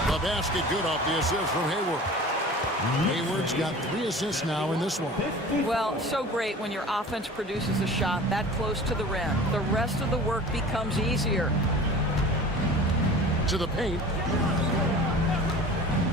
The basket good off the assist from Hayward. Hayward's got 3 assists now in this one. Well, so great when your offense produces a shot that close to the rim. The rest of the work becomes easier. To the paint.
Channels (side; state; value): both; normal; correlation 0.40